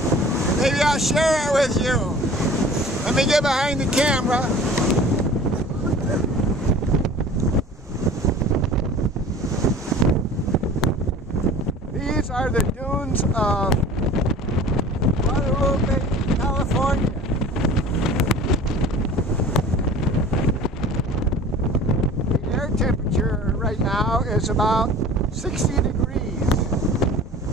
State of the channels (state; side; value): normal; both; correlation 0.43